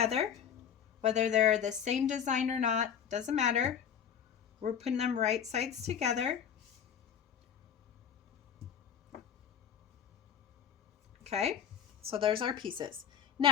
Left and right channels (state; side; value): quieter; right; 8.3 dB